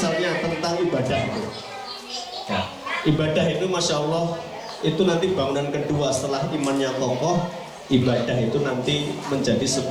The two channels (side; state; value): both; identical; correlation 1.00